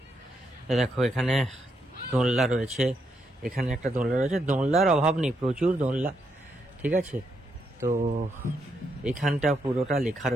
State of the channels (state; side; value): normal; both; correlation 0.79